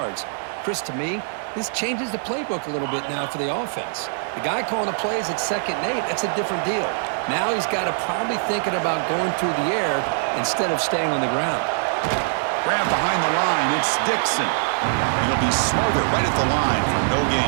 Chris, to me, this changes the playbook a little bit now for the offense. The guy calling the plays at 2nd and 8, that's a different deal. Now he's got to probably thinking about going through the air instead of staying on the ground. Grab behind the line, it's Dixon. He'll be smothered right at the line for no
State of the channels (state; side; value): silent; left; 63 dB below the other